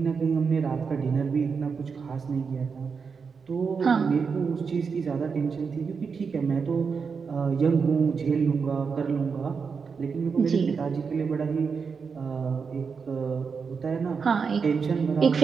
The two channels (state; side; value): quieter; left; 5.6 dB